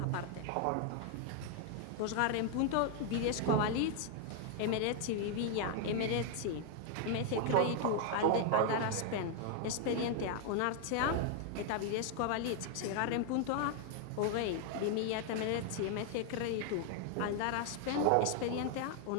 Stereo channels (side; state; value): both; different; correlation 0.00